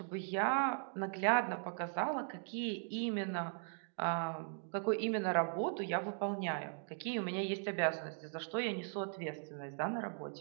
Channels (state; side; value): silent; left; digital silence